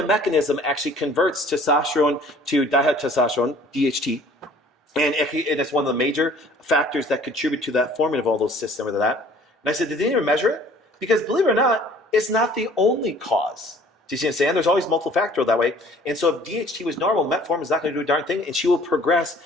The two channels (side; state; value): both; normal; correlation 0.53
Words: mechanism actually converts testosterone to dihydrotestosterone, DHT. And it's one of the major factors that contribute to that forming of all those cysts and with that. And I said, did they even measure it? Because believe it or not, it's not the only cause. Do you see what I'm saying? There's always multiple factorial that way. And so if DHT was normal, metformin is not going to do a darn thing, and she will progress